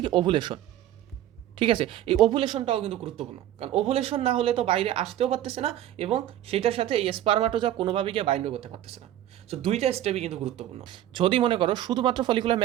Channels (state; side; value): quieter; left; 12.4 dB